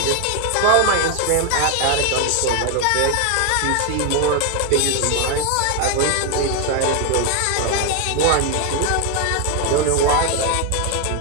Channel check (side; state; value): both; different; correlation 0.01